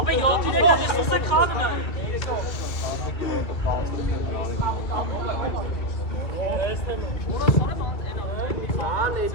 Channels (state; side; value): late; right; 2.3 ms